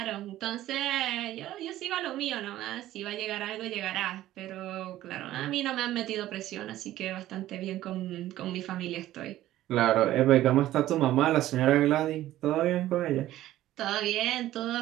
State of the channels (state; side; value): quieter; left; 14.3 dB